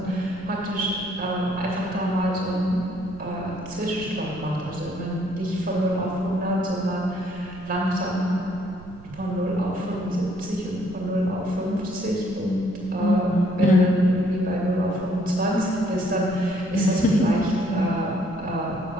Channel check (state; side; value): noise; right; rumble, 18 dB below the sound